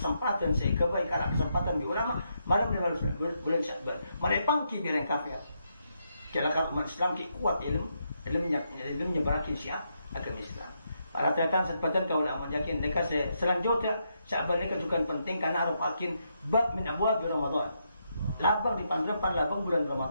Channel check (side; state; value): both; inverted; correlation -0.80